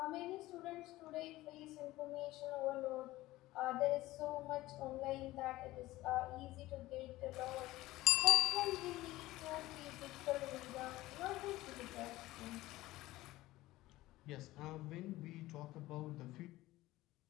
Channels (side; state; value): right; quieter; 17.4 dB